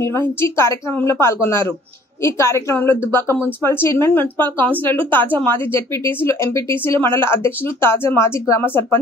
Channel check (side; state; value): both; normal; correlation 0.56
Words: నిర్వహించి కార్యక్రమంలో పాల్గొన్నారు. ఈ కార్యక్రమంలో దుబ్బాక మున్సిపల్ చైర్మన్, మున్సిపల్ కౌన్సిలర్లు, తాజా మాజీ జెడ్పీటీసీలు, ఎంపీటీసీలు, మండల అధ్యక్షులు, తాజా మాజీ గ్రామ